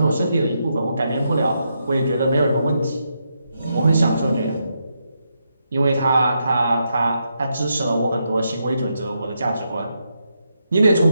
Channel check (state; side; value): inverted; both; correlation -0.82